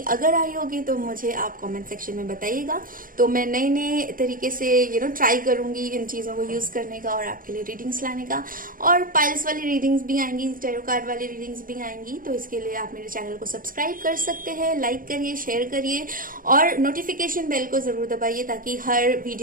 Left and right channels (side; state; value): left; late; 0.40 ms